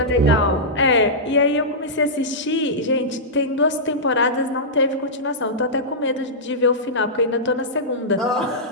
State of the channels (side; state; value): both; normal; correlation -0.13